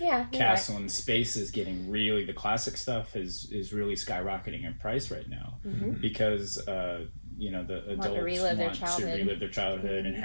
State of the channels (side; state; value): both; inverted; correlation -1.00